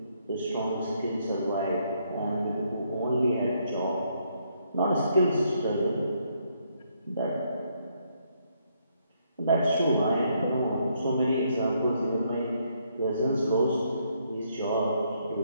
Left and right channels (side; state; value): both; inverted; correlation -0.72